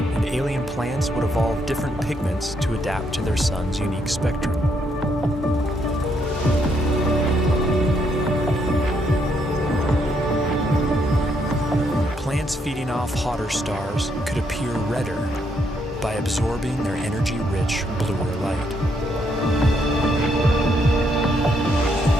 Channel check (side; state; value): both; normal; correlation 0.74